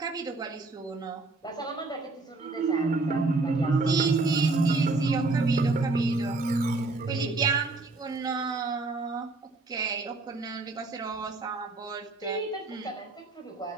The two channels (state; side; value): quieter; left; 3.4 dB